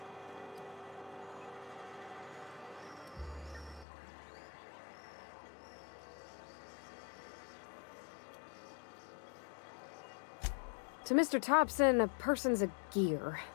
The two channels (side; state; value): right; drops out; at 3.9 s